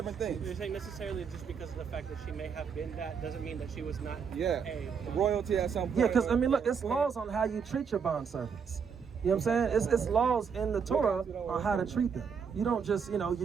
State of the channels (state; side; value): quieter; left; 6.4 dB